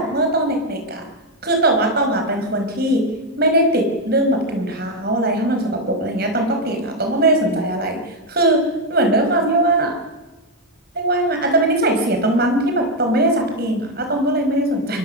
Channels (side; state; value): both; normal; correlation 0.05